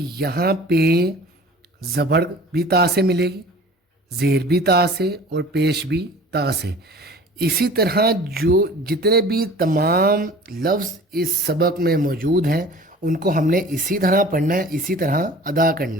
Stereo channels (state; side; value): normal; both; correlation 0.44